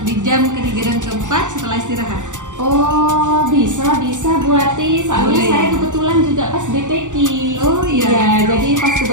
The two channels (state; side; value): late; left; 0.86 ms